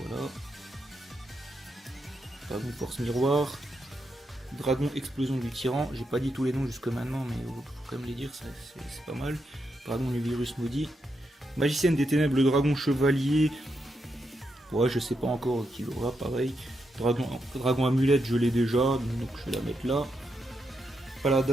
Dragon Force Miroir. Dragon Explosion du Tyran, j'ai pas dit tous les noms jusque maintenant, mais faut quand même les dire, c'est pas mal. Dragon du Virus Maudit. Magicienne des Ténèbres, le Dragon Chevalier. Ouais, je sais pas encore qui l'aura, pareil. Dragon Amulette, je l'ai déjà, donc je vais la mettre là.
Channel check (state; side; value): normal; both; correlation 0.83